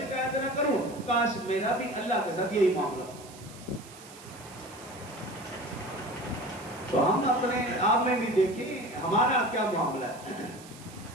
نہ کروں. کاش میرا بھی اللہ کے ساتھ یہی معاملہ ہو. تو ہم اپنے آپ میں بھی دیکھیں ہمارا کیا معاملہ ہے،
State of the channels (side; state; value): right; noise; hiss, 19 dB below the sound